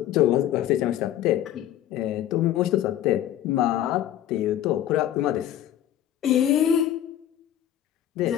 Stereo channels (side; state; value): right; quieter; 11.8 dB